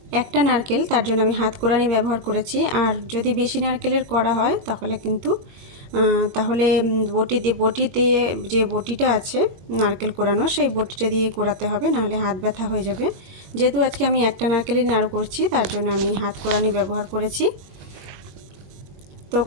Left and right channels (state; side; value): late; left; 21 ms